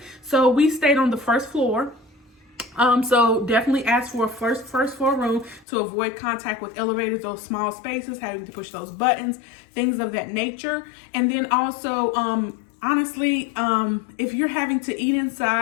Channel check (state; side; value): drops out; right; at 5.7 s